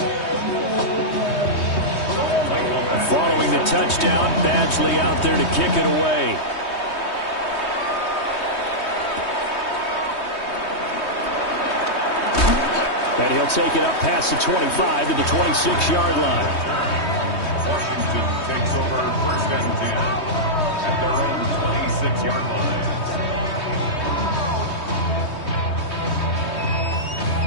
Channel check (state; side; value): late; right; 3.2 ms